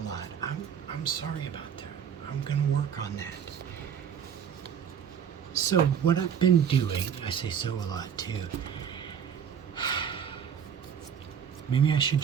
I'm sorry about that. I'm gonna work on that. So what I've been doing, I say so a lot too. Maybe I should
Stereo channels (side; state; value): left; quieter; 8.0 dB